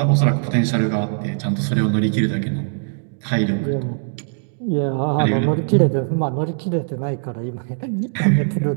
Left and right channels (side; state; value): left; silent; digital silence